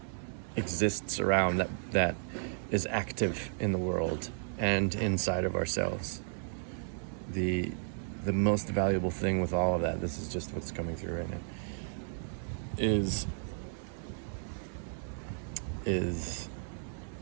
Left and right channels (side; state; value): left; silent; digital silence